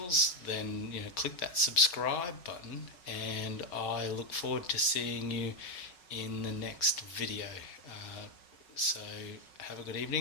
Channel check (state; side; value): late; right; 5.4 ms